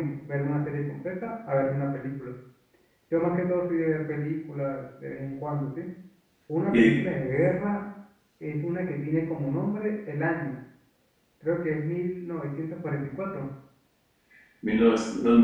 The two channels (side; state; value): both; identical; correlation 1.00